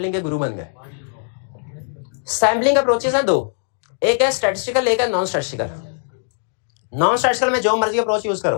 के गुरु बन गए। सैम्पलिंग अप्रोचेस हैं 2, एक है स्टैटिस्टिकल, एक है नॉन स्टैटिस्टिकल। नॉन स्टैटिस्टिकल में जो मर्जी अप्रोच यूज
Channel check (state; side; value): silent; right; digital silence